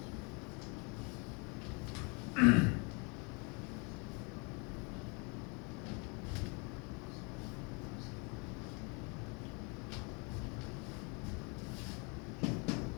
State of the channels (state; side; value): quieter; right; 32.3 dB